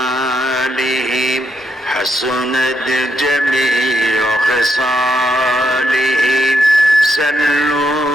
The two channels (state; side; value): normal; both; correlation 0.79